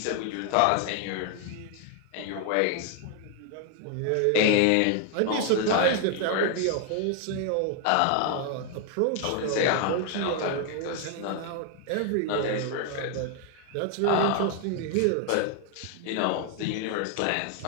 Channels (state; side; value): different; both; correlation 0.00